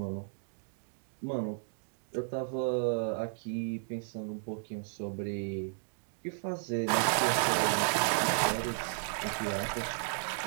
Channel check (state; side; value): silent; left; digital silence